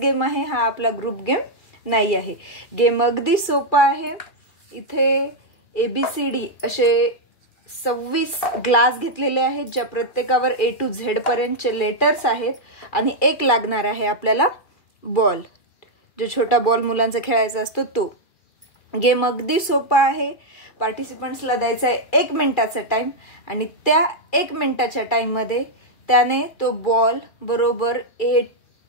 आहे, हा आपला ग्रुप गेम नाही आहे। गेम अगदी सोपा आहे। इथे ABCD असे 26 ग्लास घेतलेले आहेत, ज्या प्रत्येकावर A to Z पर्यंतचे लेटर्स आहेत आणि एक लागणार आहे आपल्याला बॉल, जो छोटा बॉल मुलांचा खेळायचा असतो तो। गेम अगदी सोपा आहे। पार्टिसिपंट्सला द्यायचा आहे 1 मिनिटाचा टाइम आणि त्या 1 मिनिटाच्या टाइम मध्ये त्याने तो बॉल बरोबर A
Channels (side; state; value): right; late; 2.3 ms